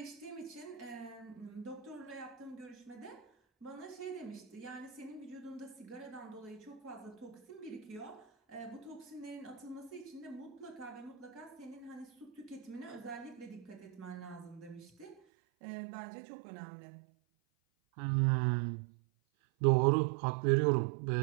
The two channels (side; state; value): left; drops out; at 15.2 s